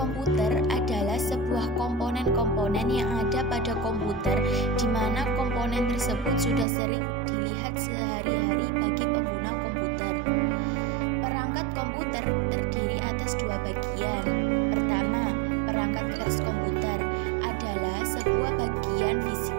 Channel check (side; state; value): left; drops out; at 6.7 s